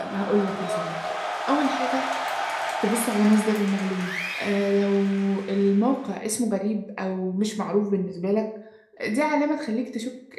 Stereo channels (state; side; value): identical; both; correlation 1.00